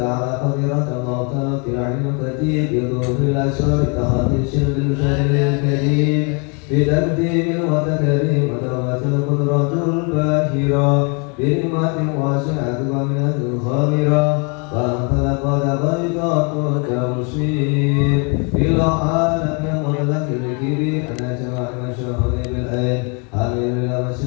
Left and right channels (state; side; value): quieter; right; 34.5 dB